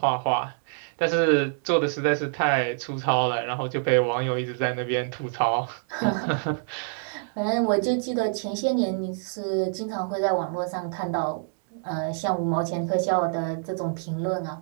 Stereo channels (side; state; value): left; silent; digital silence